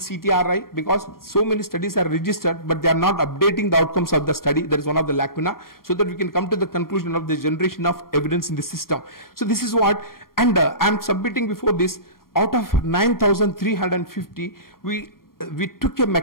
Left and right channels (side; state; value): right; late; 0.92 ms